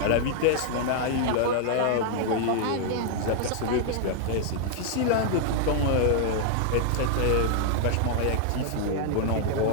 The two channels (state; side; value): different; both; correlation 0.00